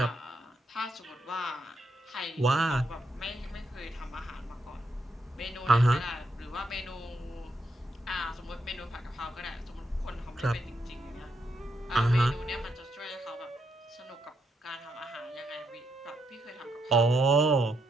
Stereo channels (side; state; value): both; normal; correlation 0.79